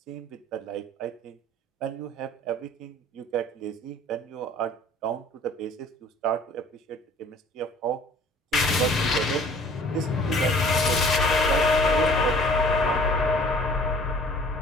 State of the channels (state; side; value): normal; both; correlation 0.51